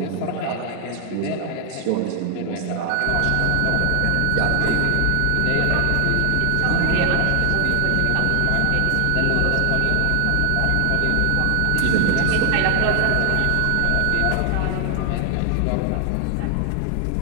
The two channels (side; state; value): both; different; correlation 0.00